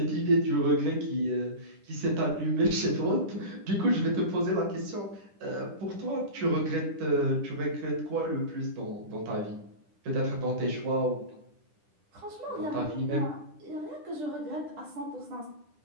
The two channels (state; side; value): late; left; 10 ms